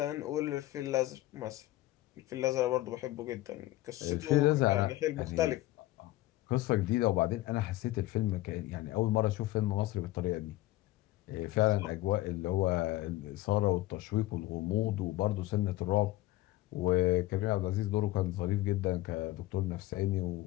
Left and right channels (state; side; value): quieter; right; 17.2 dB